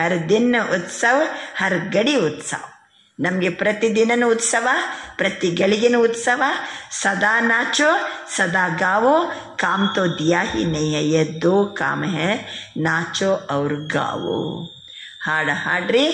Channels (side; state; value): both; identical; correlation 1.00